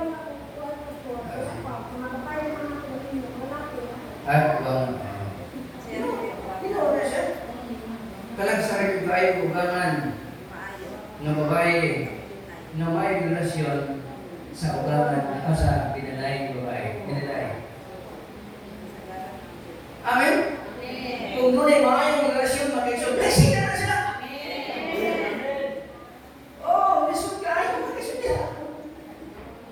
Ugang. Kalang sa rin tayo ugangan ng babae na may relasyon sa ugangan o sa pinalay babae. Pinalay. Amen? Kung doon ay maayong relasyon, mag-isyon, blessing na sila! Oh, lisod ka ayaw, mag-isyon nila.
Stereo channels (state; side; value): identical; both; correlation 1.00